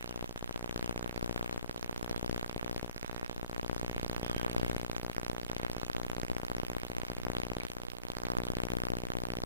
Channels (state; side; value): inverted; both; correlation -0.52